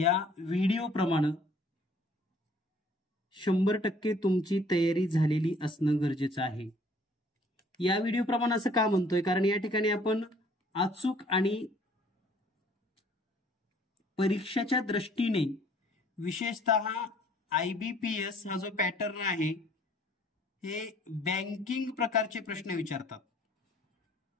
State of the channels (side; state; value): both; normal; correlation 0.58